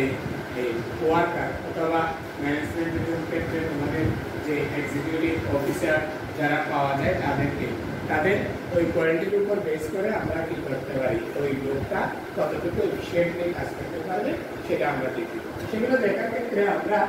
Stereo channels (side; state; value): both; identical; correlation 1.00